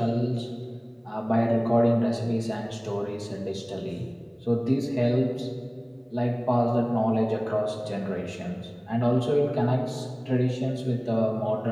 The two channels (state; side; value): identical; both; correlation 1.00